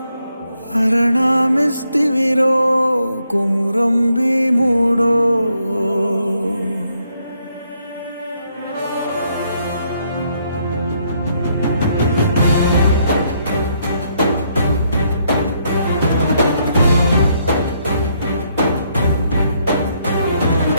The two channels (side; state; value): both; inverted; correlation -0.74